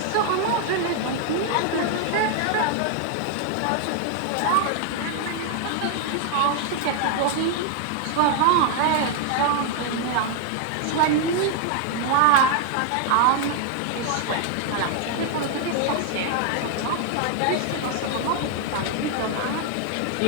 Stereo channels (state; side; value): different; both; correlation 0.00